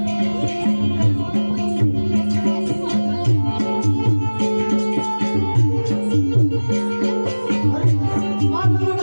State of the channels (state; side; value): inverted; both; correlation -1.00